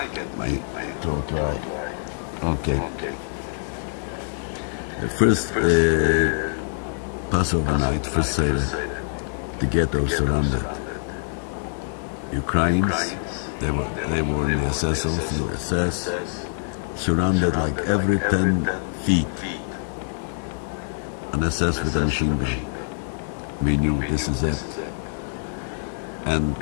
my throat dry. Okay. The first Passover night, first Seder, the ghetto surrounded. Ukrainians, they were in the SS, also the SS, surrounded like every 10 feet. An SS with a machine gun. We knew this is it. And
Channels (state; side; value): silent; right; 62 dB below the other